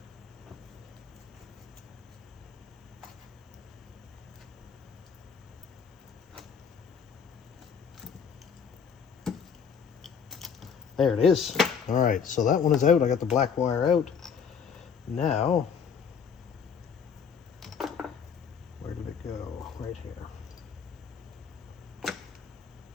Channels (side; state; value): right; quieter; 6.7 dB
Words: There it is. All right, so that one is out. I got the black wire out. Now, where did it go? Right here.